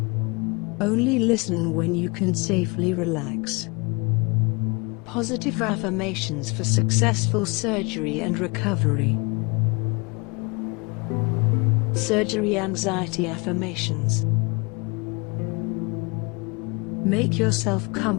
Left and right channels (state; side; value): quieter; right; 29.1 dB